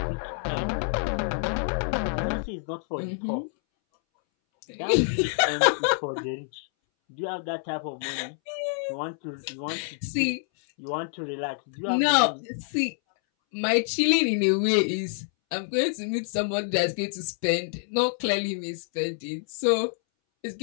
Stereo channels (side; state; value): right; silent; 60 dB below the other